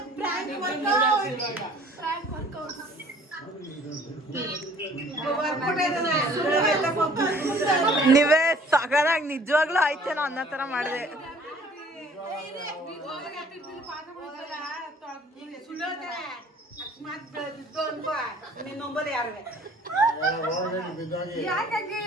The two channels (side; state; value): both; normal; correlation 0.54